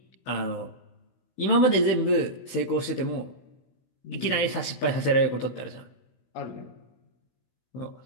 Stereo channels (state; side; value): late; right; 16 ms